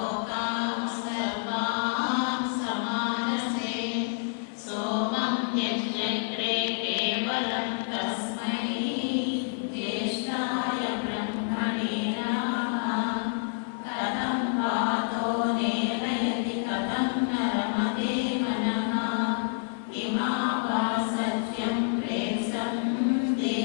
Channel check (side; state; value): right; silent; 59 dB below the other